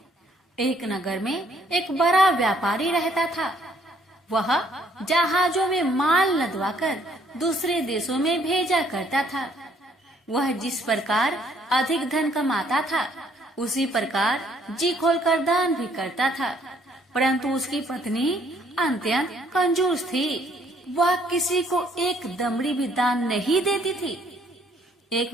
एक नगर में एक बड़ा व्यापारी रहता था। वह जहाजों में माल लदवाकर दूसरे देशों में भेजा करता था। वह जिस प्रकार अधिक धन कमाता था, उसी प्रकार जी खोलकर दान भी करता था। परंतु उसकी पत्नी अत्यंत कंजूस थी। वह किसी को एक दमड़ी भी दान नहीं देती थी। एक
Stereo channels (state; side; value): normal; both; correlation 0.65